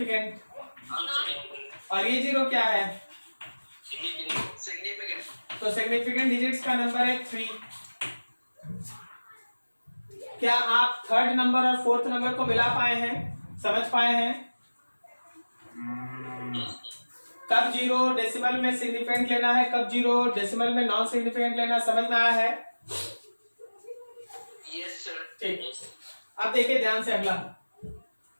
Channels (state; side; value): inverted; both; correlation -1.00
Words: और ये जीरो क्या है? सिग्निफिकेंट। तो सिग्निफिकेंट डिजिट्स का नंबर है 3। क्या आप 3rd नंबर और 4th नंबर को मिला पाए हैं, समझ पाए हैं? कब जीरो डेसिमल में सिग्निफिकेंट लेना है, कब जीरो डेसिमल में नॉन सिग्निफिकेंट लेना, समझ में आया है? Yes sir. ठीक, अब देखिए ध्यान से अगला,